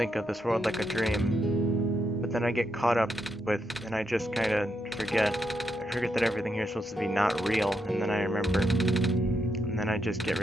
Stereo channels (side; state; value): both; normal; correlation 0.82